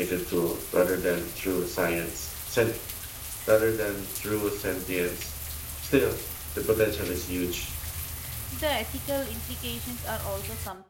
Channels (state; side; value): identical; both; correlation 1.00